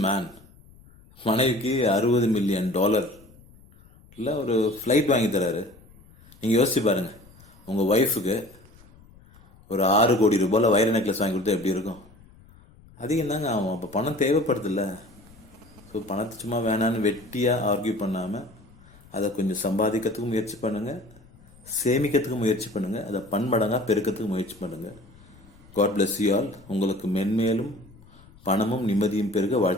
மேன். மனைவிக்கு $60 மில்லியன் இல்லை ஒரு ஃப்ளைட் வாங்கி தராரு. நீங்கள் யோசிச்சு பாருங்கள், உங்கள் ஒய்ஃபுக்கு ஒரு 6 கோடி ரூபாயில் வைர நெக்லஸ் வாங்கி கொடுத்தா எப்படி இருக்கும்? அதிகம் தாங்க ஆகும். அப்போ பணம் தேவைப்படுதில்ல. ஸோ பணத்தை சும்மா வேணான்னு வெட்டியாக ஆர்கியூ பண்ணாமல் அதை கொஞ்சம் சம்பாதிக்கிறதுக்கும் முயற்சி பண்ணுங்கள், சேமிக்கிறதுக்கும் முயற்சி பண்ணுங்கள், அதை பன்மடங்காக பெருக்கிறதுக்கு முயற்சி பண்ணுங்கள். God bless you all. உங்களுக்கு மென்மேலும் பணமும் நிம்மதியும் பெருக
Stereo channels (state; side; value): noise; left; rumble, 25 dB below the sound